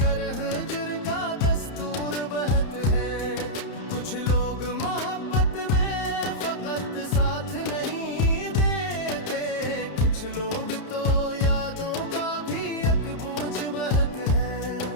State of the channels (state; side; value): late; right; 31 ms